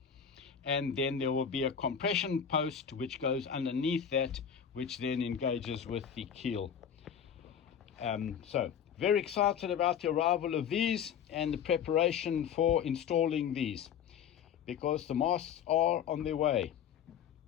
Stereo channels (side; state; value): right; quieter; 8.1 dB